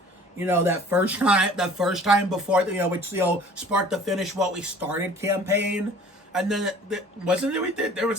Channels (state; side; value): normal; both; correlation 0.49